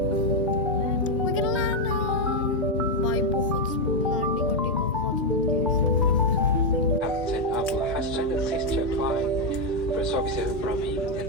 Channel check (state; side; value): normal; both; correlation 0.02